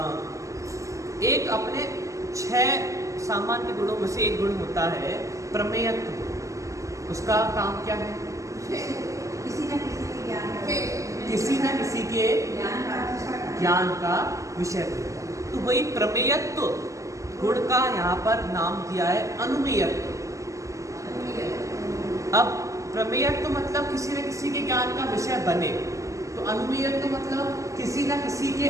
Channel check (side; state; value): left; late; 0.16 ms